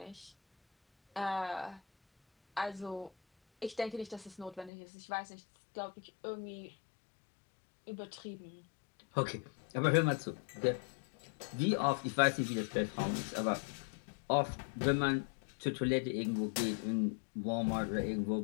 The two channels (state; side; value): drops out; right; at 4.7 s